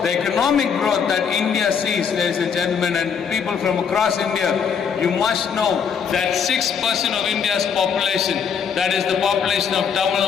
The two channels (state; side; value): quieter; right; 6.9 dB